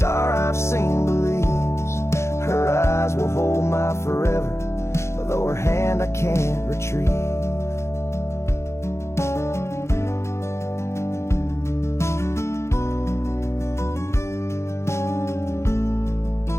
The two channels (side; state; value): right; late; 0.13 ms